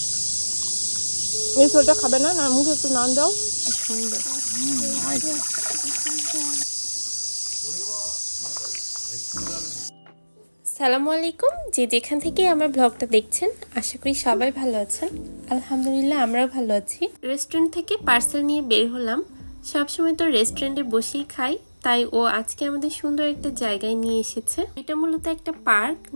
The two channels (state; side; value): inverted; both; correlation -1.00